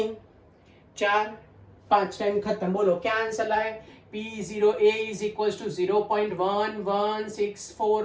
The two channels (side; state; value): both; identical; correlation 1.00